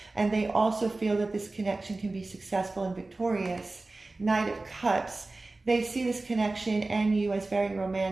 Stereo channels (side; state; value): left; quieter; 3.2 dB